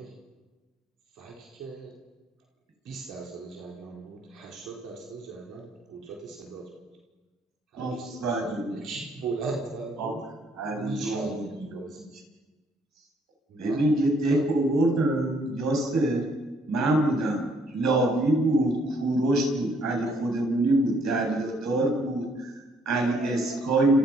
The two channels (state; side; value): normal; both; correlation 0.66